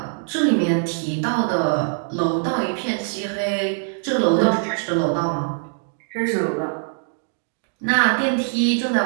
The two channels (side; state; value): left; silent; digital silence